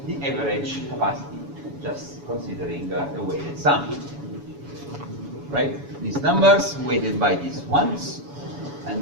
average capacity, just considering the weighted sum. Right? These numbers weighted by these ones,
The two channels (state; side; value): late; left; 7.1 ms